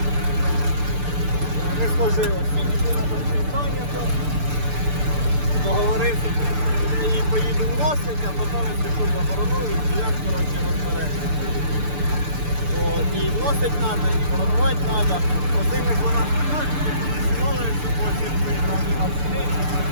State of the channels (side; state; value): left; late; 6.8 ms